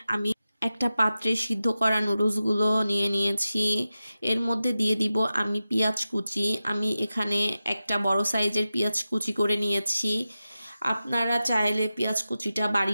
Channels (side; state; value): both; inverted; correlation -0.93